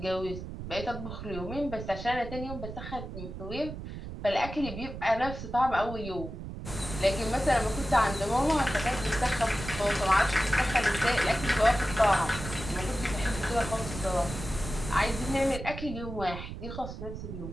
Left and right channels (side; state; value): right; noise; rumble, 9 dB below the sound